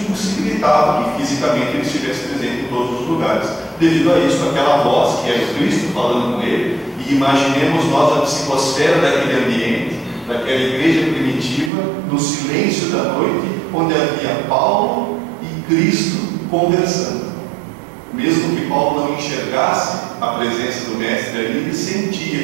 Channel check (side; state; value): left; drops out; at 11.7 s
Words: impossibilitava que fisicamente ele estivesse presente em todos os lugares. Devido a isso, aquela voz que era o Cristo falando com ele, e imaginemos nós a psicosfera daquele ambiente, daquela igreja primitiva, no silêncio da noite, onde havia Paulo e Cristo conversando. Mesmo que Paulo não enxergasse a presença do Mestre ali, ele